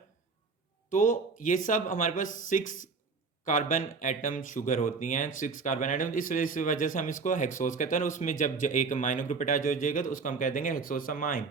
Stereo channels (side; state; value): left; quieter; 4.7 dB